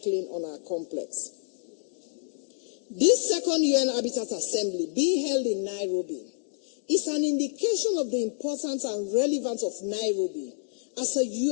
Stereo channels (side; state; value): right; silent; digital silence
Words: on our complex. This second UN Habitat Assembly, being held in Nairobi, is an indication of the importance and relevance of Nairobi as a